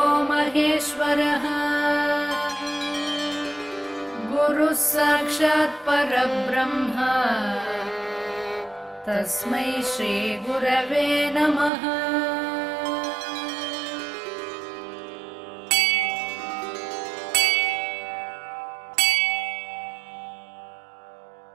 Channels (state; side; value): drops out; left; at 11.7 s